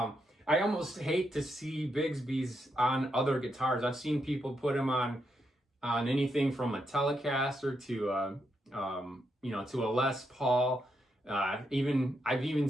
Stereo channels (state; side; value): normal; both; correlation 0.81